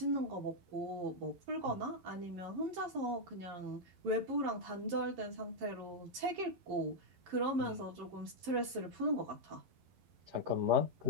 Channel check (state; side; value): late; left; 11 ms